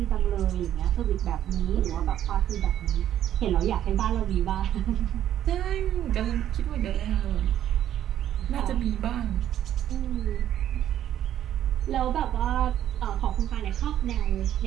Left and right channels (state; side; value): quieter; left; 11.3 dB